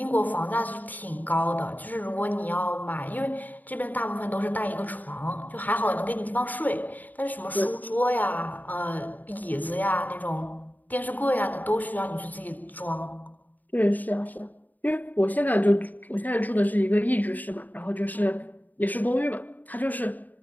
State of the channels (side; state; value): right; late; 0.083 ms